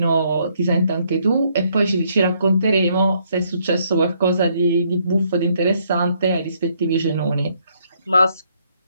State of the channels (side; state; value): both; inverted; correlation -0.71